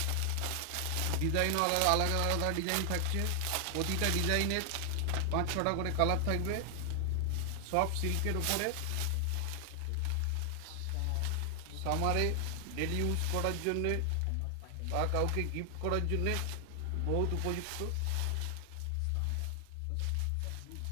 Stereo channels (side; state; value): both; different; correlation 0.00